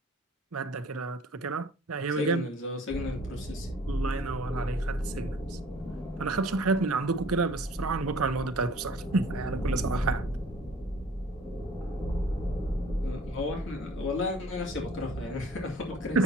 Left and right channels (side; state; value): both; normal; correlation 0.51